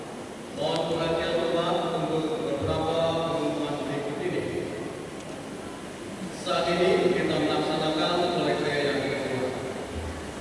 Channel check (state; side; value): identical; both; correlation 1.00